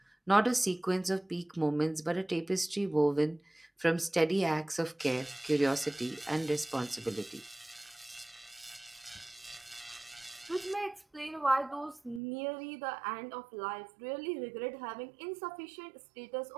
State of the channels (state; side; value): drops out; left; at 12.2 s